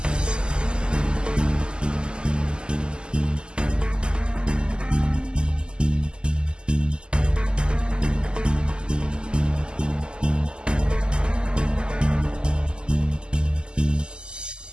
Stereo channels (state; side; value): late; left; 0.048 ms